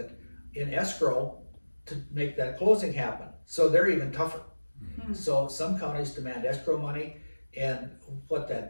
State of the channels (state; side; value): inverted; both; correlation -1.00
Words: in escrow to make that closing happen. So they're even tougher. So some counties demand escrow money, and what